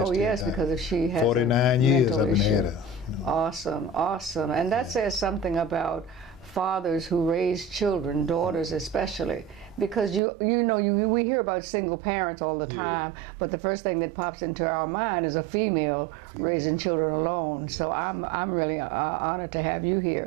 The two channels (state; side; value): drops out; left; at 10.2 s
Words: yes, because if she has 49 years I've been had her. Awesome, awesome. And that says something about fathers who raise children, daughters especially, because we hear about single parents all the time, but the first thing that pops into our mind is a female raising children alone. Yes. So I'm really honored to have you here.